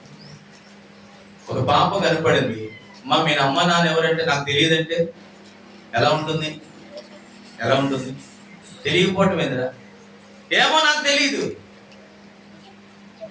ఒక పాప కనపడింది, మీ అమ్మ నాన్న ఎవరంటే నాకు తెలియదంటే ఎలా ఉంటుంది? తెలియకపోవటం ఏందిరా? ఏమో నాకు తెలియదు.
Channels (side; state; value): both; identical; correlation 1.00